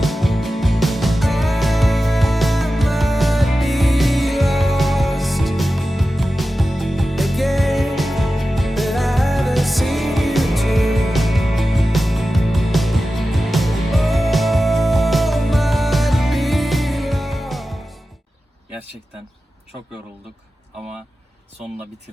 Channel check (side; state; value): both; normal; correlation 0.94